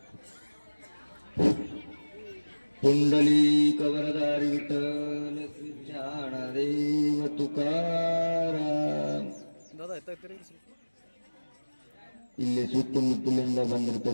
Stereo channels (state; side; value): inverted; both; correlation -1.00